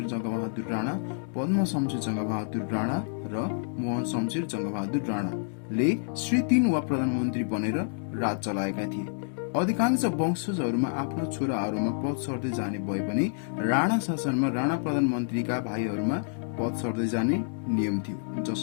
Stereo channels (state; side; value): silent; right; digital silence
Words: जङ्गबहादुर राणा, पद्म शमशेर जङ्गबहादुर राणा र मोहन शमशेर जङ्गबहादुर राणाले श्री 3 वा प्रधानमन्त्री बनेर राज चलाएका थिए। अधिकांश वंशजहरूमा आफ्ना छोराहरूमा पद सर्दै जाने भए पनि राणा शासनमा राणा प्रधानमन्त्रीका भाइहरूमा पद सर्दै जाने नियम थियो,